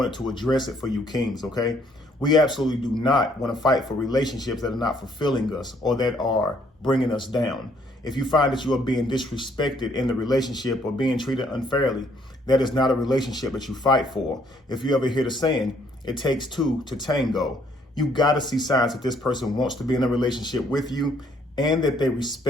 to address it for you kings, okay? We absolutely do not want to fight for relationships that are not fulfilling us or that are bringing us down. If you find that you are being disrespected in the relationship or being treated unfairly, that is not a relationship that you fight for. If you ever hear the saying, it takes two to tango, you got to see signs that this person wants to be in a relationship with you and that they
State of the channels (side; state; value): both; normal; correlation 0.66